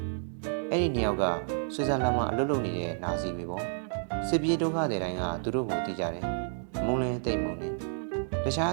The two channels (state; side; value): silent; left; digital silence